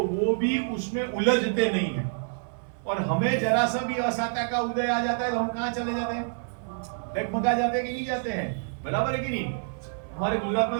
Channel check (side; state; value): left; silent; 59 dB below the other